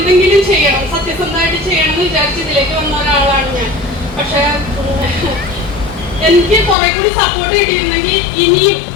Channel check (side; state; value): right; drops out; at 6.8 s